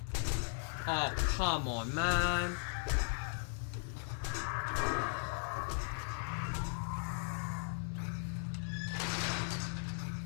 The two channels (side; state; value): right; silent; 53 dB below the other